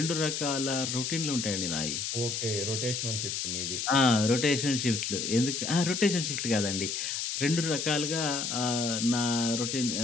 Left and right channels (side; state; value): left; noise; hiss, 2 dB below the sound